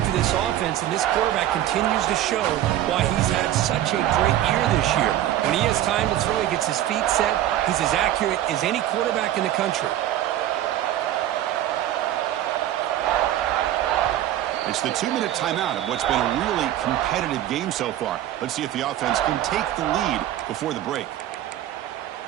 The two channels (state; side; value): quieter; left; 12.8 dB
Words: for this offense, and this quarterback continues to show why he's had such a great year this year. When he has time to throw, he gets his feet set. He's as accurate as any quarterback in the country. It's the 2-minute timeout of what's been a really competitive game so far. Let's see if the offense can take the lead before the break.